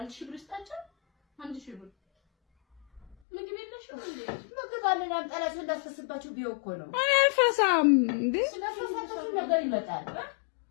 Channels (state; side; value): drops out; right; at 3.2 s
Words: ሺህ ብር ስጣቸው። አንድ ሺህ ብር ምግብ የለሽም እንዴ? ምግብ አለን አምጣላችሁ እንዳትፈስባችሁ ቢው እኮ ነው። እኔ አልፈሳም እንዴ። ስለፈሳችሁ ነገር ይመጣል።